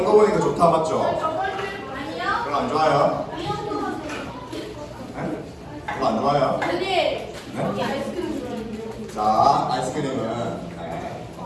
또 보니까 좋다 맞죠? 별로 안 좋아요? 네? 별로 안 좋아요? 네? 자, 아이스크림은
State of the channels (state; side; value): identical; both; correlation 1.00